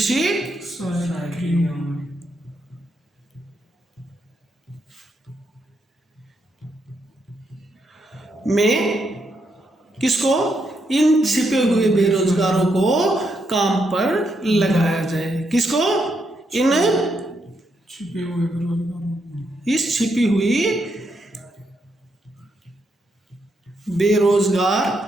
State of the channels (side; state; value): both; normal; correlation 0.79